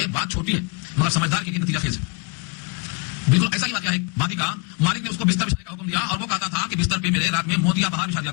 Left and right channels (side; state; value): right; quieter; 32.5 dB